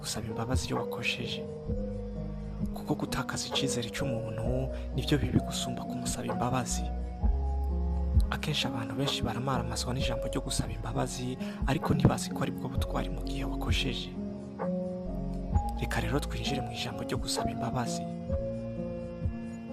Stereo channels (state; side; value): identical; both; correlation 1.00